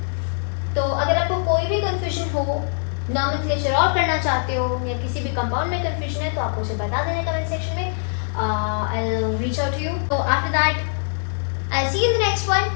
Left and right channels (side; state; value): right; silent; digital silence